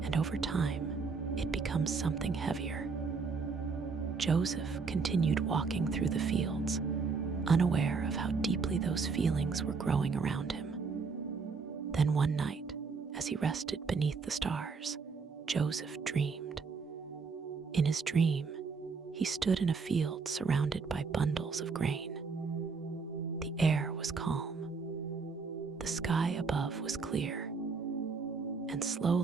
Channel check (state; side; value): quieter; left; 4.9 dB